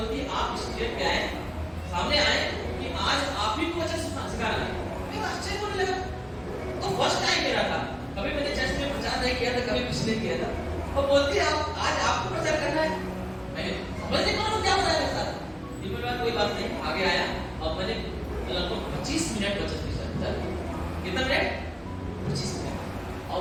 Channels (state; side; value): identical; both; correlation 1.00